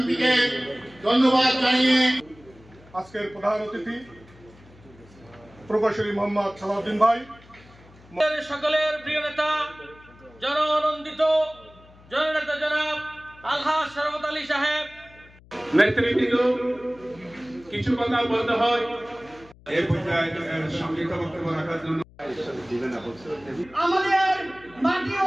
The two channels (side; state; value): left; noise; hum, 25 dB below the sound